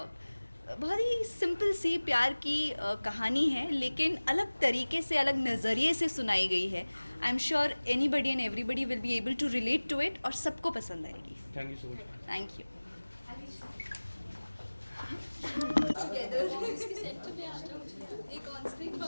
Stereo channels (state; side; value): inverted; both; correlation -1.00